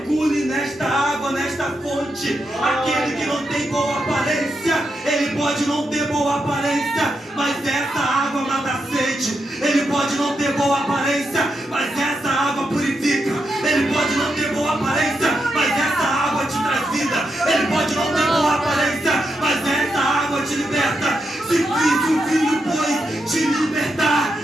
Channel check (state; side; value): normal; both; correlation 0.84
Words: nesta água, nesta fonte. Aquele que não tem boa aparência, ele pode não ter boa aparência, mas essa água mata a sede. Ele pode não ter boa aparência, mas essa água purifica. Ele pode não ter boa aparência, mas essa água te traz vida. Ele pode não ter boa aparência, mas essa água te liberta. Se o Filho, pois, te libertar,